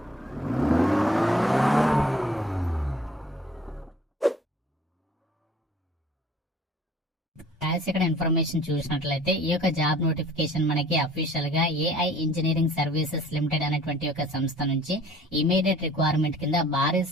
ఇక్కడ ఇన్ఫర్మేషన్ చూసినట్లయితే ఈ యొక్క జాబ్ నోటిఫికేషన్ మనకి అఫీషియల్ గా ఏఐ ఇంజనీరింగ్ సర్వీసెస్ లిమిటెడ్ అనేటువంటి ఒక సంస్థ నుంచి ఇమీడియట్ రిక్వైర్మెంట్ కింద భారీ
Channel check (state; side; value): normal; both; correlation 0.53